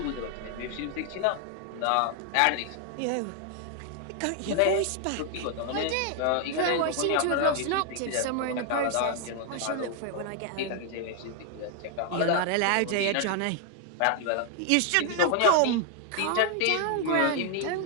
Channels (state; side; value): different; both; correlation 0.00